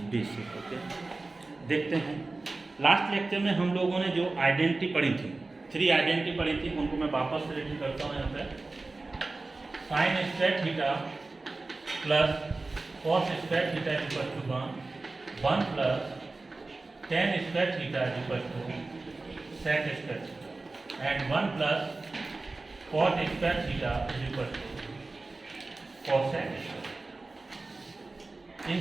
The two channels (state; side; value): quieter; left; 3.4 dB